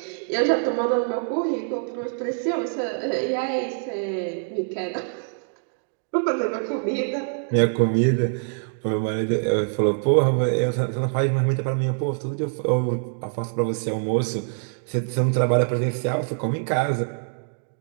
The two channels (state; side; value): silent; left; digital silence